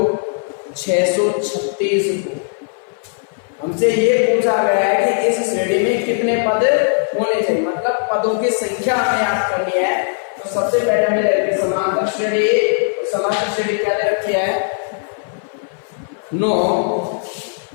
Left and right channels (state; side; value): silent; right; 58 dB below the other